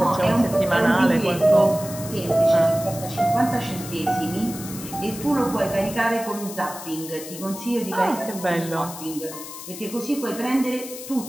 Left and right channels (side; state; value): left; noise; hiss, 12 dB below the sound